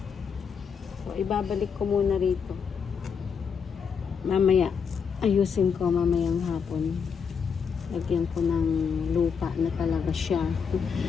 So, ibabalik ko muna rito. Mamaya. Ayusin ko mamayang hapon. Lagyan ko ng lupa na talaga siya.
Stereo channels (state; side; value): quieter; right; 6.4 dB